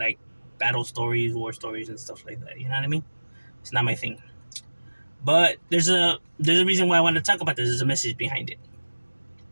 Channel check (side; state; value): both; inverted; correlation -1.00